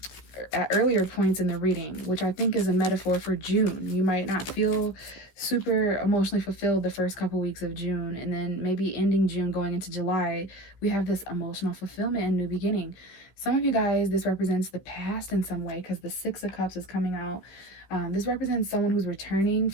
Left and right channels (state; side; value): late; right; 16 ms